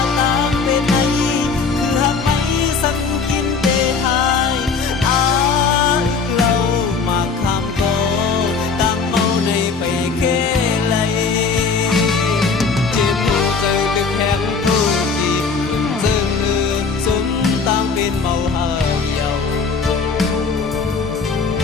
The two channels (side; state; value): right; quieter; 4.9 dB